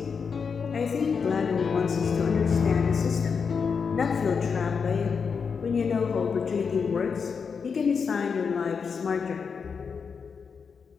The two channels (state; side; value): quieter; right; 5.9 dB